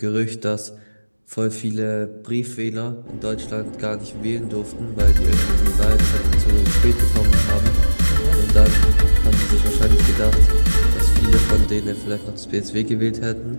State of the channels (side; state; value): both; inverted; correlation -1.00